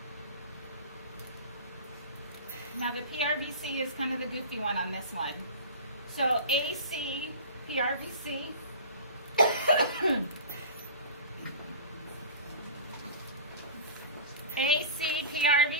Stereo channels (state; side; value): inverted; both; correlation -0.35